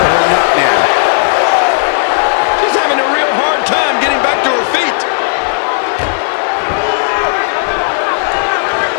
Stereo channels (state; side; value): silent; right; digital silence